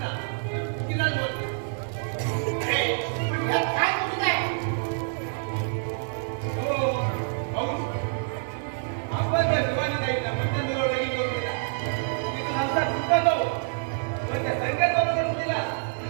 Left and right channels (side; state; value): left; silent; digital silence